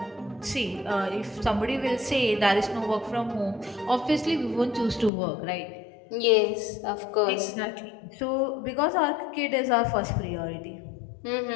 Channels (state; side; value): drops out; right; at 5.1 s